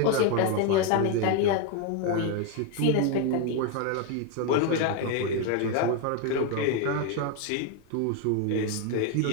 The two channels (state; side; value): different; both; correlation 0.01